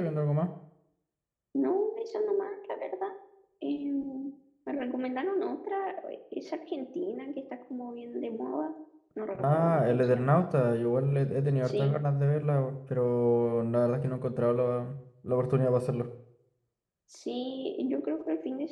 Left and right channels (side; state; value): both; identical; correlation 1.00